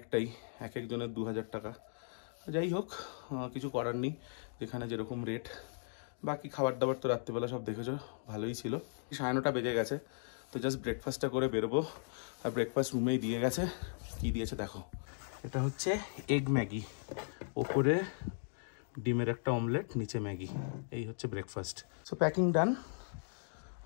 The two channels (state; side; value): silent; right; digital silence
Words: এক একজনের 2000 টাকা। যাই হোক, কিছু করার নেই, যেখানে যেরকম রেট। বাকি খাবার দাবার তো রাত্রিবেলা সব দেখেছো, ভালোই ছিল। 9:30 বেজে গেছে, তো জাস্ট ব্রেকফাস্টটা করে বেরোবো। আর ব্রেকফাস্ট রুমেই দিয়ে গেছে। কি দিয়েছে দেখো, এটা হচ্ছে এগ ম্যাগি, ওপরে ডিমের একটা অমলেট, নিচে ম্যাগি। এই হচ্ছে ব্রেকফাস্ট। সো প্যাকিং ডান,